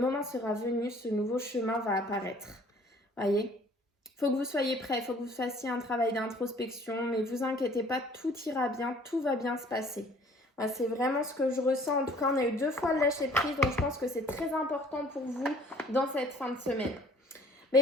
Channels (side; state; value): both; normal; correlation 0.55